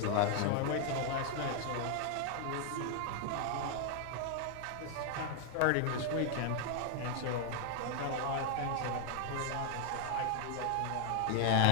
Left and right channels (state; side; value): different; both; correlation 0.00